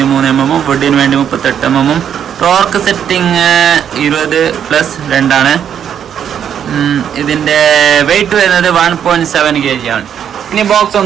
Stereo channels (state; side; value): quieter; left; 8.8 dB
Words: mm, വുഡിന് വേണ്ടി 38 mm. ടോർക്ക് സെറ്റിംഗ് 20+2 ആണ്. ഇതിന്റെ വെയിറ്റ് വരുന്നത് 1.7 kg ആണ്. ഇനി ബോക്സ്